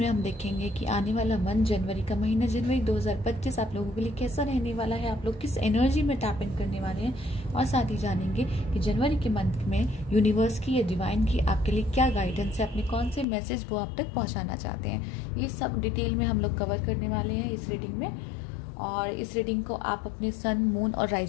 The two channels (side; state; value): right; drops out; at 13.2 s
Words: हम देखेंगे कि आने वाला मंथ, जनवरी का महीना, जनवरी 2025 आप लोगों के लिए कैसा रहने वाला है, आप लोग किस एनर्जी में टैप इन करने वाले हैं, और साथ ही जानेंगे कि जनवरी के मंथ में यूनिवर्स की या डिवाइन की आपके लिए क्या गाइडेंस है, अपने कौन से मैसेज वो आप तक पहुँचाना चाहते हैं। ये सब डिटेल में हम लोग कवर करने वाले हैं इस रीडिंग में। और इस रीडिंग को आप अपने सन, मून और